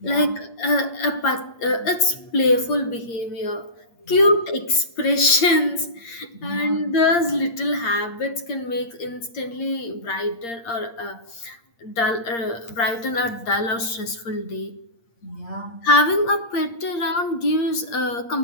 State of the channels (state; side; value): late; right; 8.6 ms